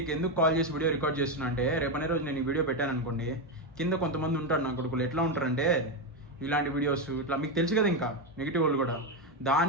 ఎందుకు కాల్ చేసి వీడియో రికార్డ్ చేస్తున్నా అంటే, రేపనే రోజు నేను ఈ వీడియో పెట్టాను అనుకోండి, కింద కొంతమంది ఉంటారు నా కొడుకులు, ఎట్లా ఉంటారంటే ఇలాంటి వీడియోస్ ఇట్లా మీకు తెలుసు కదా, ఇంకా నెగిటివ్ వాళ్ళు కూడా.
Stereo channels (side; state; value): both; normal; correlation 0.09